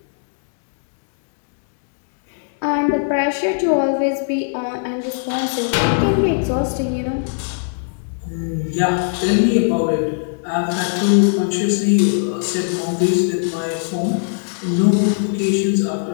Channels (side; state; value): right; silent; 66 dB below the other